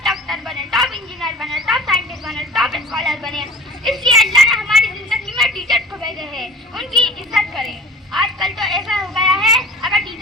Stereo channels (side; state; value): both; normal; correlation 0.44